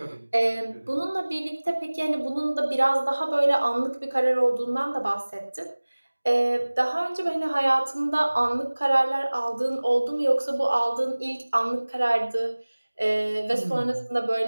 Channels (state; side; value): inverted; both; correlation -1.00